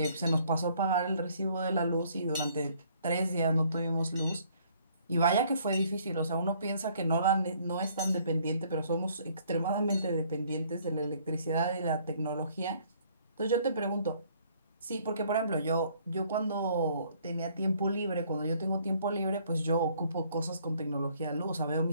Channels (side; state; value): both; inverted; correlation -0.62